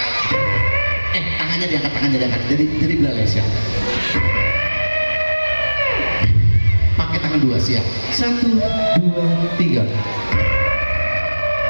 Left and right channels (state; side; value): inverted; both; correlation -1.00